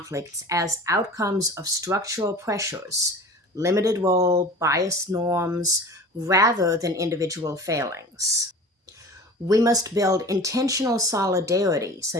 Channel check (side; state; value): both; normal; correlation 0.38